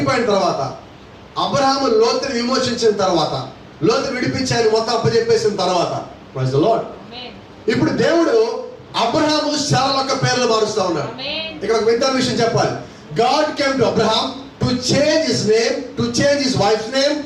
తర్వాత అబ్రహాము లోతుని విమోచించిన తర్వాత, లోతు విడిపించి ఆయన మొత్తం అప్పచెప్పేసిన తర్వాత, ప్రైజ్ ద లార్డ్, ఇప్పుడు దేవుడు అబ్రహాము శారా యొక్క పేర్లు మారుస్తా ఉన్నాడు. ఇక్కడ ఒక వింత విషయం చెప్పాలి. God came to Abraham to change his name, to change his wife's name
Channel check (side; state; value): both; identical; correlation 1.00